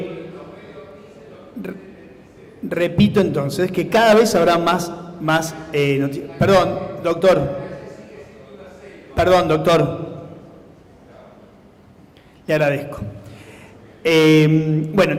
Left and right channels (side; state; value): both; identical; correlation 1.00